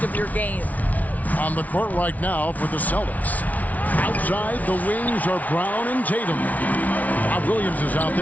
of your game. On the court right now for the Celtics. Outside, the wings are Brown and Tatum. Bob Williams is out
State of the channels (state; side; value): late; right; 0.072 ms